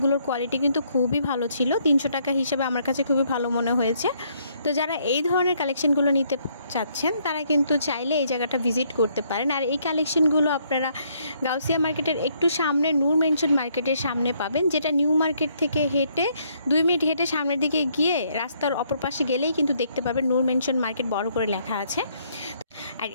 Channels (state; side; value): inverted; both; correlation -0.70